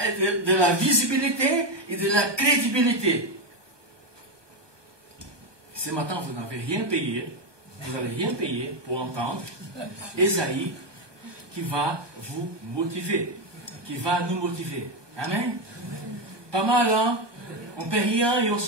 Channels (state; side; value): late; left; 1.2 ms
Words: visibilité et de la crédibilité. Ce matin, vous n'avez rien payé, vous n'allez rien payer pour entendre Ésaïe qui va vous motiver, qui va nous motiver. Amen. Pas mal, hein? On ne paie rien et on